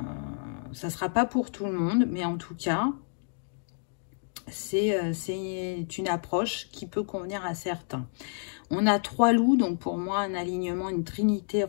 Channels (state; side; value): silent; right; digital silence